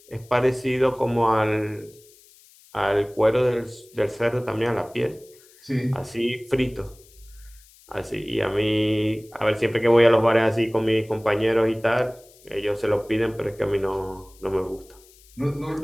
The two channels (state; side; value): noise; left; hiss, 27 dB below the sound